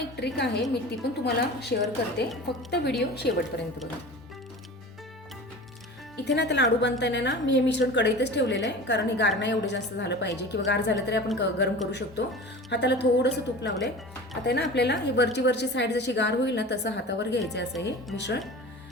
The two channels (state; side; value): normal; both; correlation 0.36